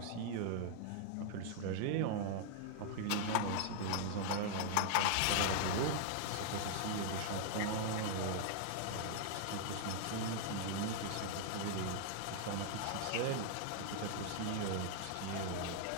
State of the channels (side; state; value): both; different; correlation -0.01